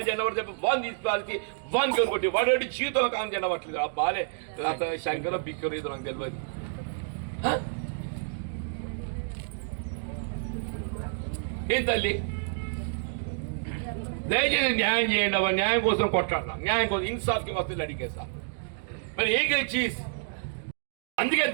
జెండా చెప్పి వాన్ తీసుకు వాన్ కొట్టి వాడు జీవితంలో కాంగ్రెస్ జెండా పట్టలేదు. ఆ బాలే శంకర బిక్కరు ఇది నాకు తెలియదు. ఏం తల్లి దయచేసి న్యాయం చేయండి అవ్వ. న్యాయం కోసం కొట్లాడదాం, న్యాయం కోసం ఇన్సాఫ్కి వస్తుంది అడిగేస్తా. మరి ఏ చీజ్ అందుకే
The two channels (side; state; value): left; silent; digital silence